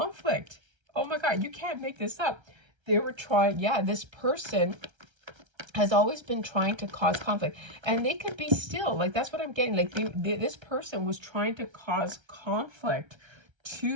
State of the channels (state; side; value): late; left; 1.3 ms